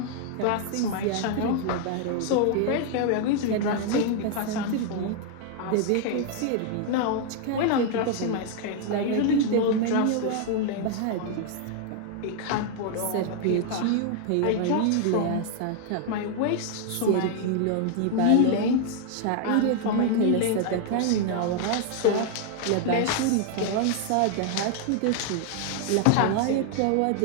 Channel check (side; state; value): both; different; correlation 0.00